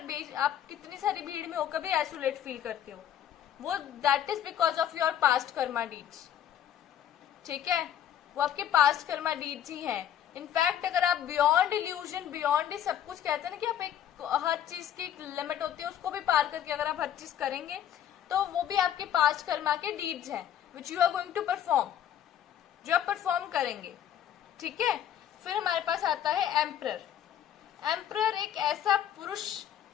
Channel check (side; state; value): right; quieter; 10.3 dB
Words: आप कितनी सारी भीड़ में होकर भी आइसोलेट फील करते हो, वो that is because of your past Karma deeds, ठीक है। वो आपके पास्ट कर्मा डीड्स ही हैं। इनफैक्ट अगर आप बियॉन्ड इल्यूजन, बियॉन्ड ही सब कुछ कहते हैं ना कि आप एक हर चीज की एक लिमिट होती है, उसको भी पार करके अगर आप हर चीज करेंगे तो वो भी आपके पास्ट कर्मा के डीड्स हैं, which you are going to perform, जो आप परफॉर्म करेंगे, ठीक है। फिर हमारे पास आता है एम्परर। एम्परर एक ऐसा पुरुष,